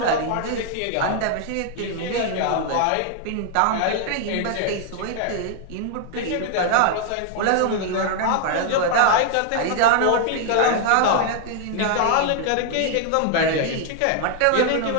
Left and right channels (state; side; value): different; both; correlation 0.00